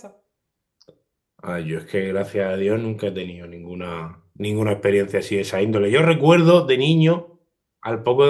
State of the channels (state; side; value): identical; both; correlation 1.00